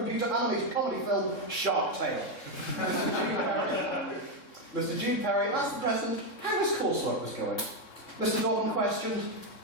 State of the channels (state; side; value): late; right; 3.6 ms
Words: animated comedy film Shark Tale. Mr. Jude Perry asked the President how his coursework was going. Mr. Dobbin questioned,